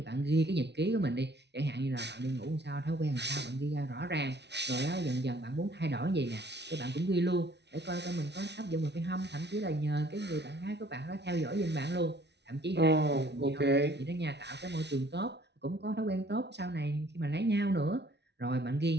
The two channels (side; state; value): left; late; 0.50 ms